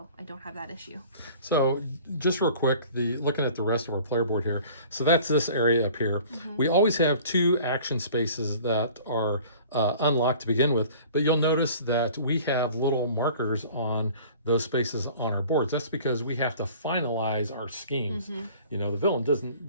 I don't have that issue. So just real quick, looking at the rest of our player board here. So that's this area up here. We always have 2 action spaces that are unlocked to begin with, but you'll notice that we have little markers on those spaces on our boards. That's because we have to finalize our schemes. You know, the villain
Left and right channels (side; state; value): both; inverted; correlation -0.47